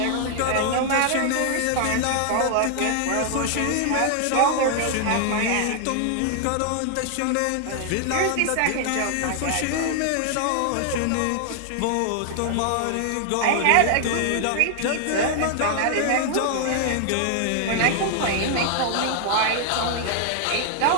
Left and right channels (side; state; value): both; different; correlation 0.00